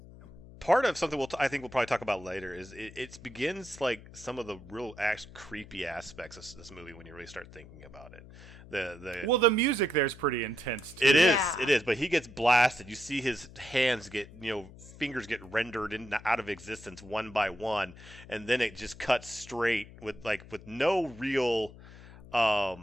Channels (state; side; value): noise; left; hum, 18 dB below the sound